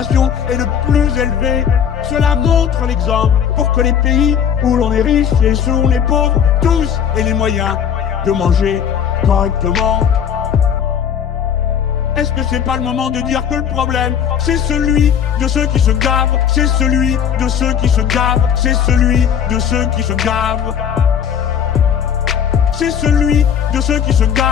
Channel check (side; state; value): right; quieter; 8.3 dB